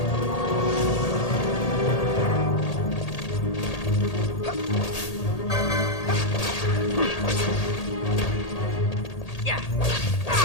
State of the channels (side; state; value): right; late; 1.8 ms